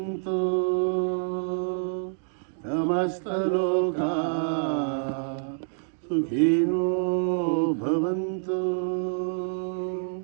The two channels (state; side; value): silent; left; digital silence